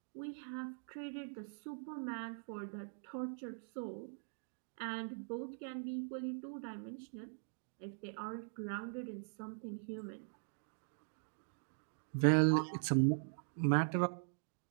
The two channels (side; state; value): left; silent; digital silence